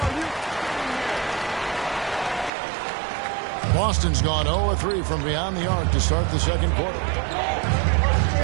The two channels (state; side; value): drops out; left; at 2.5 s